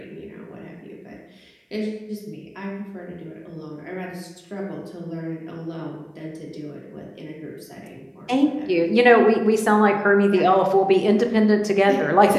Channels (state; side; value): identical; both; correlation 1.00